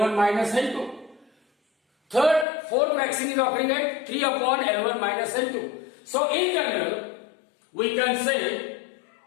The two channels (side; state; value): right; drops out; at 2.5 s